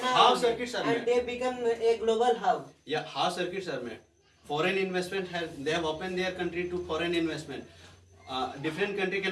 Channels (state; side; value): identical; both; correlation 1.00